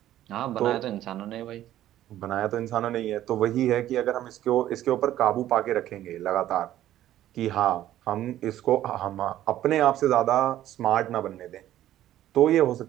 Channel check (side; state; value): left; quieter; 13.0 dB